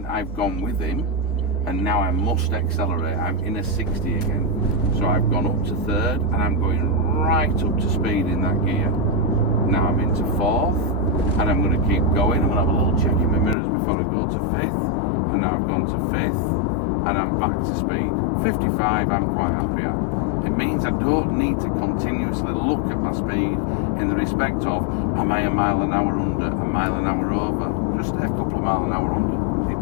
I've gone with him. and now I must accelerate. I'm in a 60 again. So I've gone up to third and I'm going right up to speed in that gear. Now I'm into fourth and I'm going to keep going. I'm going to have a little check in my mirrors before I go to fifth. And now I've gone to fifth and I'm back to speed. 55 I'm quite happy at. It means I don't need to continuously look at my speed in the respect of, am I a mile an hour under, a mile an hour over? Just a couple of mile an hour under.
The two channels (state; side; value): drops out; right; at 13.6 s